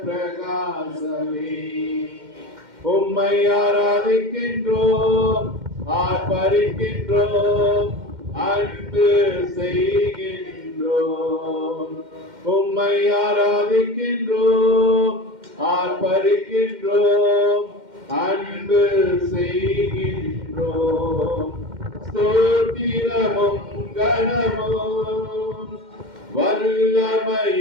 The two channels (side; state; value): left; late; 2.1 ms